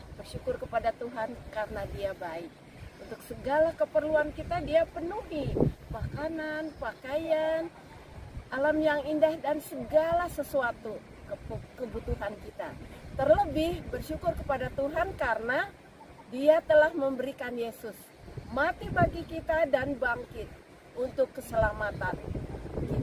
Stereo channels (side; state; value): both; identical; correlation 1.00